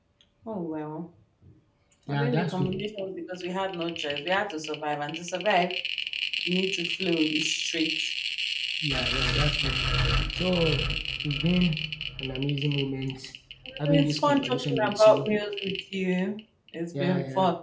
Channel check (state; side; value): identical; both; correlation 1.00